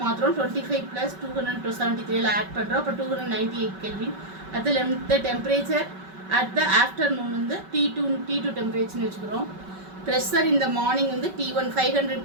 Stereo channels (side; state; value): left; late; 5.3 ms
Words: மாத்திரம் 25 plus 273 add பண்ணுறோம். அப்போ 298 kelvin. அதில் இந்த temperature at the afternoon வந்து T2 டெம்பரேச்சர்னு வச்சுக்கிறோம். ப்ரெஷர் இந்த மார்னிங் வந்து T1 500